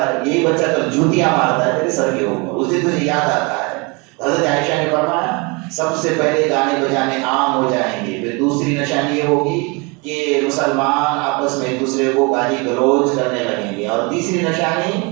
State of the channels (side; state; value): left; quieter; 29.2 dB